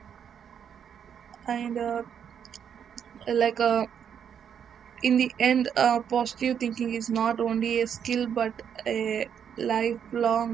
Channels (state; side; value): quieter; left; 8.2 dB